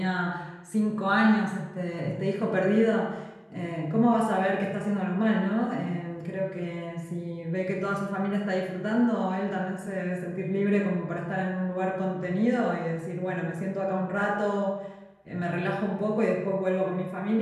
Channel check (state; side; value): identical; both; correlation 1.00